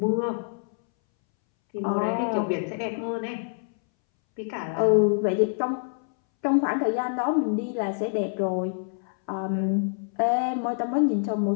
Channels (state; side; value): silent; right; 61 dB below the other